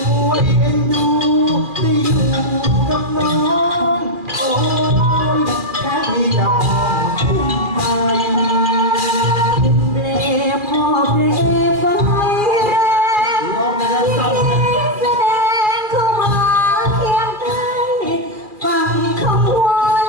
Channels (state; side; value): late; left; 2.4 ms